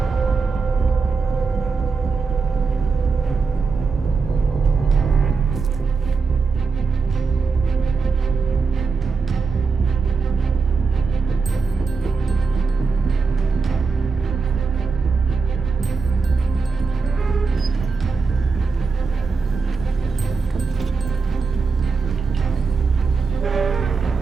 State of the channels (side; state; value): left; quieter; 4.7 dB